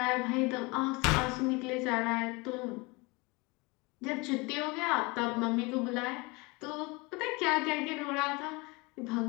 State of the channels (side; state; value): right; quieter; 26.1 dB